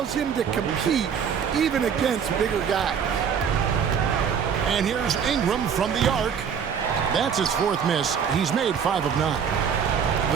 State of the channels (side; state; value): left; quieter; 7.3 dB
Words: him to compete even against bigger guys. And here's Ingram from the arc. That's his fourth miss. He's made 5 of 9.